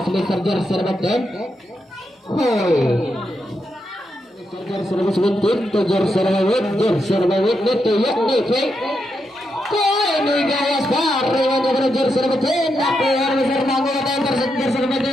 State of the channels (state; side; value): normal; both; correlation 0.83